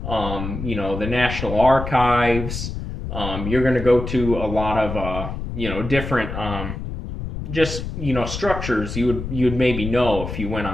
the National Archives. You're going to go to a lot of, different, just, structures you'd maybe know if you went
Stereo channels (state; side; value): noise; left; rumble, 6 dB below the sound